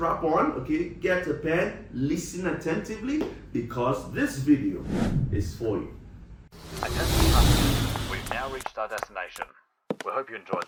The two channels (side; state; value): both; identical; correlation 1.00